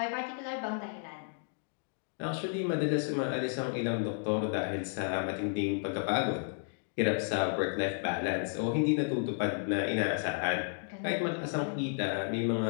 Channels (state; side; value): silent; right; 56 dB below the other